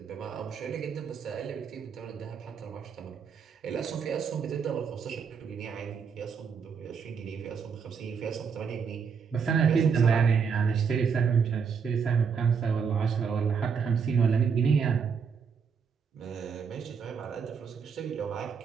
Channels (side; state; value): left; quieter; 6.3 dB